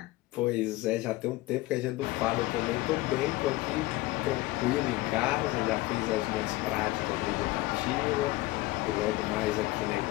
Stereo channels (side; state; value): right; quieter; 19.2 dB